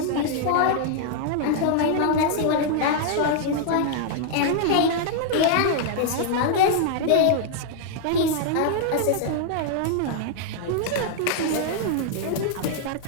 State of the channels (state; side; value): different; both; correlation -0.01